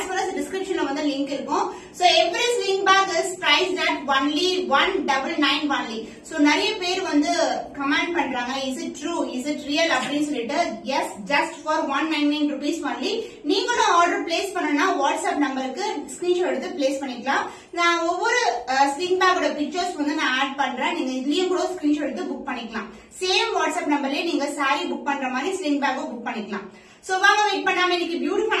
well as description la vandha link irukum. So every sling bag is priced at only 199 only. So nariya per vandu comment pandranga, is it true, is it real appdin solittu. Yes, just for 199 rupees only. Neengalum order place pannana WhatsApp number ku screenshot eduthu place panikalam. Na ovvoru sling bag oda pictures vandu na add pandren, neenga idliyum kuda screenshot eduthu book panikalam. Same WhatsApp number la neenga saree book pandra mari sling bag book panikalam. So வாங்க வெயிட் பண்ணாம இன்னைக்கு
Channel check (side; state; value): both; identical; correlation 1.00